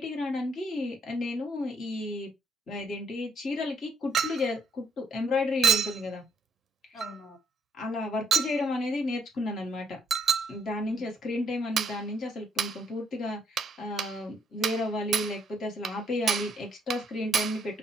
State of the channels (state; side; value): normal; both; correlation 0.70